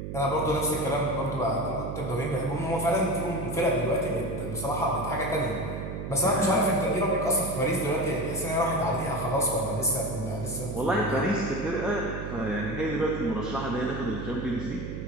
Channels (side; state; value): right; noise; hum, 6 dB below the sound